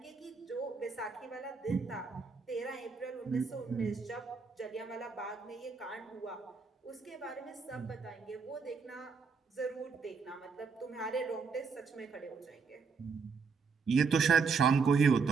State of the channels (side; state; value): left; quieter; 5.1 dB